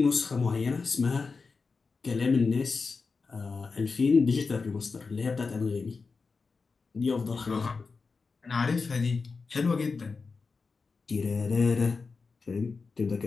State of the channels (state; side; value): quieter; right; 4.5 dB